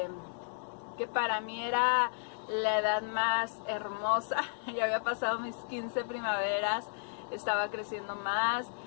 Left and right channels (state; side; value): silent; right; digital silence